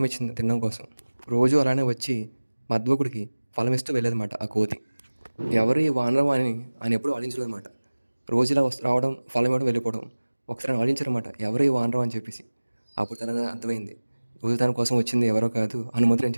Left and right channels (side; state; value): both; inverted; correlation -1.00